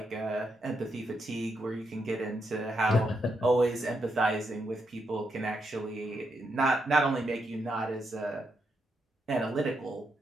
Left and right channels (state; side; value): normal; both; correlation 0.81